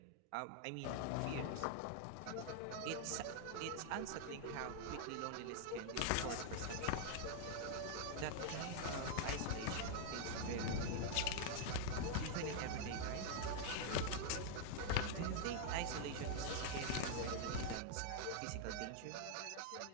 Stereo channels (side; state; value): both; different; correlation 0.00